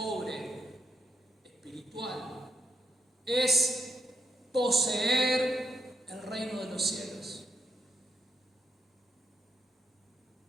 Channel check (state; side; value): normal; both; correlation 0.77